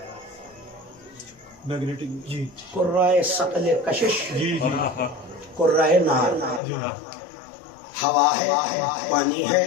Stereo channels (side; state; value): right; drops out; at 6.6 s